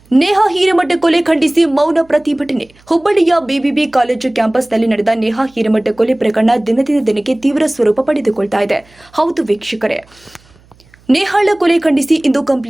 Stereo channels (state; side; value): noise; right; hum, 30 dB below the sound